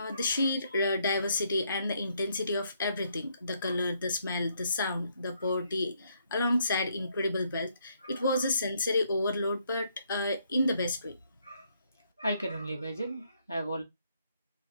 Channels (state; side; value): inverted; both; correlation -0.72